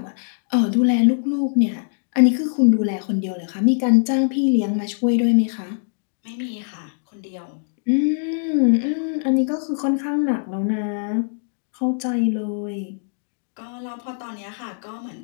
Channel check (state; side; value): silent; right; digital silence